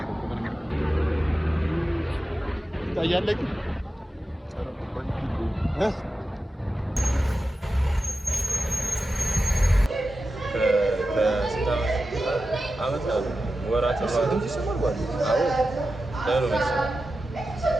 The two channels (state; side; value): normal; both; correlation 0.92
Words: ምንም ታያለክ አመት ወራት